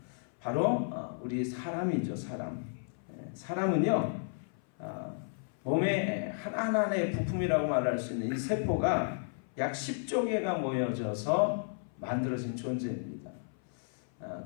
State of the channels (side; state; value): right; silent; 56 dB below the other